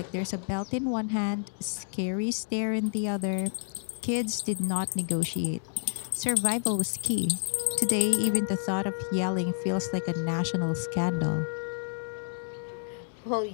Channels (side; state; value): right; silent; digital silence